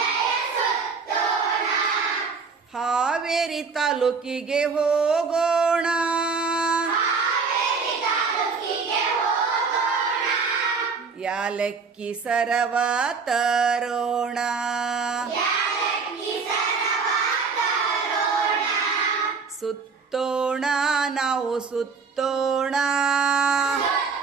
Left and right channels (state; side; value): quieter; left; 5.0 dB